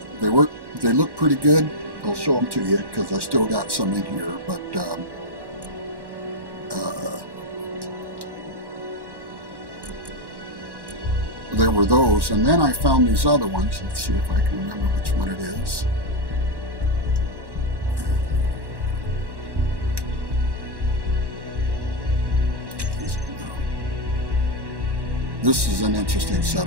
they look pretty good. I'll show them to you because I still got some in here, but there were those, and then I found these other ones. Let's see if I can remember which one it is. this is an interesting set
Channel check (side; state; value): left; late; 1.1 ms